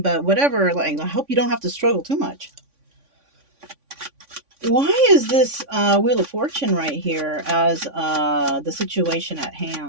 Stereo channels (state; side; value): late; left; 3.5 ms